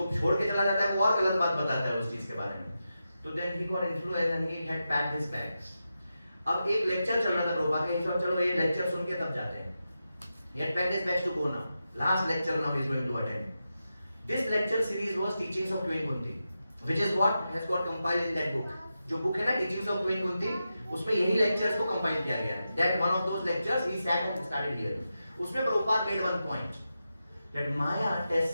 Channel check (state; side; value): inverted; both; correlation -0.90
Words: छोड़ के चला जाता है वो और गलत बात बताता है उस चीज के बारे में. So then he got influenced and he had packed his bags. अब एक लेक्चर चल रहा था प्रभुपाद का, सब चलो ये लेक्चर सुन के तब जाते हैं. He had packed his bags to go now. Last lecture now he is going to attend. This lecture series was Teachings of Queen Kunti, which is what has got compiled in that book. जो book है ना Teachings of Queen Kunti, उसमें यही lectures को compile किया गया है. That one of those lectures he sat and started hearing. उसमें Prabhupada made one point that Maya